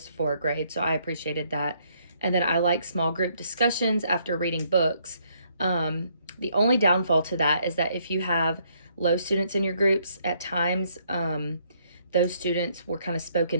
for a grade. So I appreciated that. And then I like small group discussions after reading books. The only downfall to that is that if you have low students in your groups, at times those students were kind of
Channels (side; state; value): both; inverted; correlation -0.70